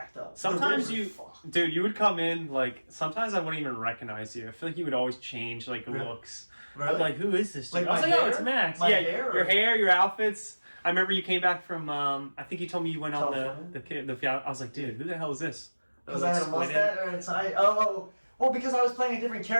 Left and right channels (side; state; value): both; inverted; correlation -1.00